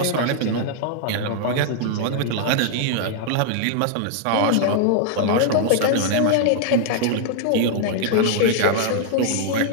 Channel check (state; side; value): different; both; correlation -0.01